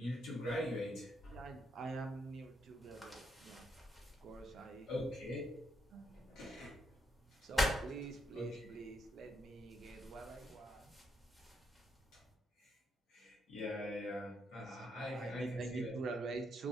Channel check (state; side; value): normal; both; correlation 0.78